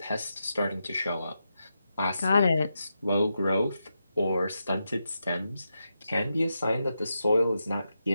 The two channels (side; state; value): both; inverted; correlation -0.87